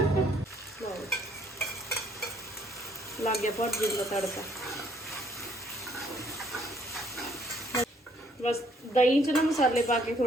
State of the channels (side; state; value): both; normal; correlation 0.65